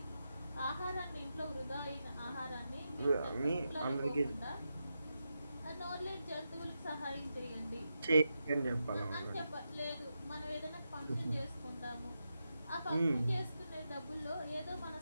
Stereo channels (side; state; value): both; inverted; correlation -0.88